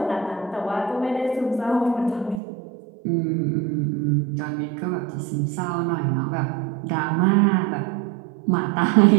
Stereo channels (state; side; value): drops out; left; at 2.4 s